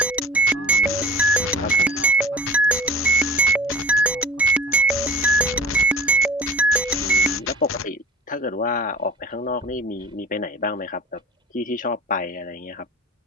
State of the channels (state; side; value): normal; both; correlation 0.41